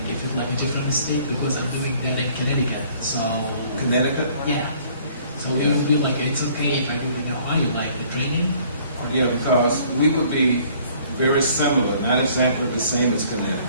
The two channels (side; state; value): both; inverted; correlation -0.57